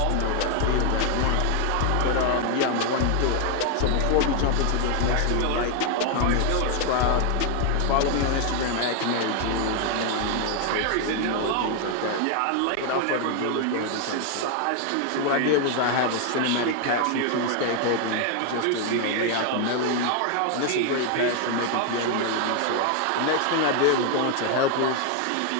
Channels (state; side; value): different; both; correlation 0.01